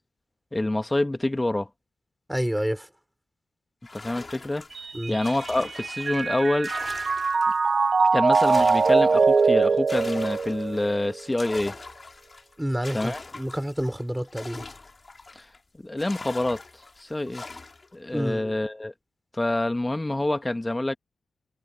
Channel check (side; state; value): both; normal; correlation 0.95